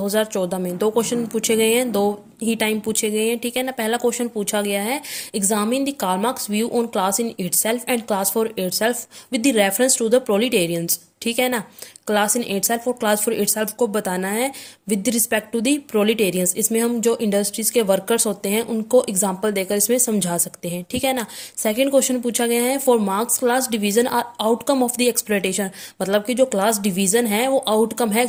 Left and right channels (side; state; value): both; identical; correlation 1.00